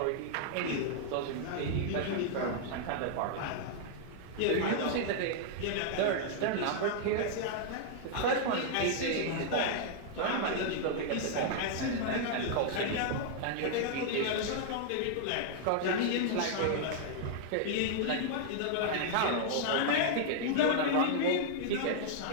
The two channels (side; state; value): both; different; correlation -0.01